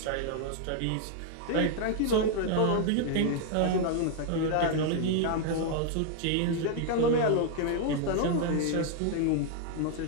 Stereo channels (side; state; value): both; different; correlation 0.00